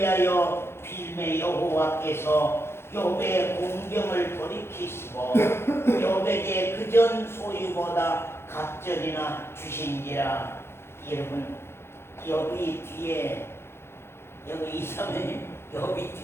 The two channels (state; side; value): late; right; 0.12 ms